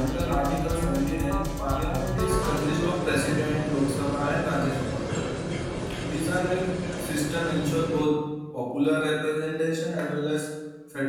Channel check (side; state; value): both; identical; correlation 1.00